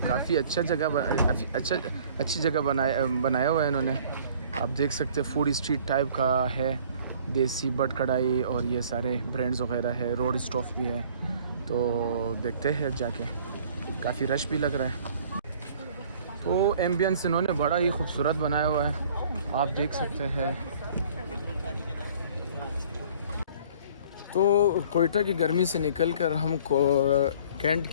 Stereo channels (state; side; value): inverted; both; correlation -0.52